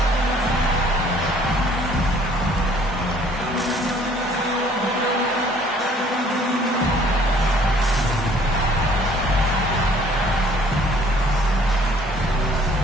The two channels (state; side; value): normal; both; correlation 0.58